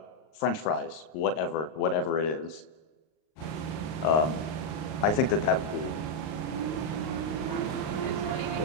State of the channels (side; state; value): right; late; 38 ms